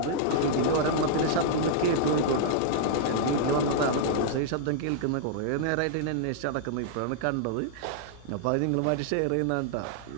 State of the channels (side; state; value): both; different; correlation -0.01